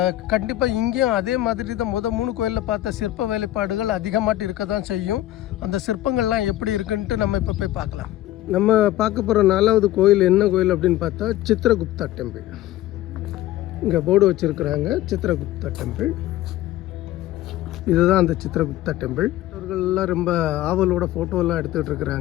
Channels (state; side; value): quieter; right; 14.7 dB